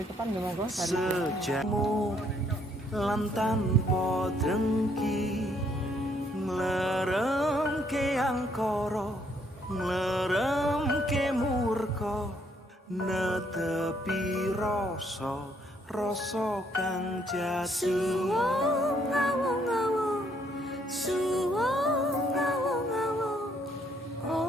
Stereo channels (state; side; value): normal; both; correlation 0.69